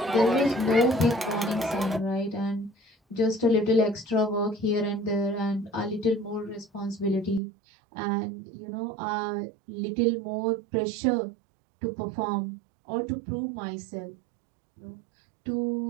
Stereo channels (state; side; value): drops out; left; at 7.4 s